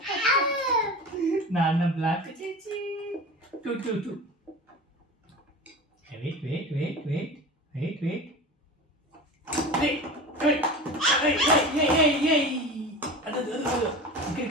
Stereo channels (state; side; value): normal; both; correlation 0.32